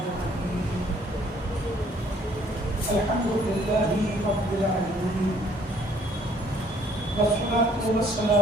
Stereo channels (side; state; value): both; normal; correlation 0.61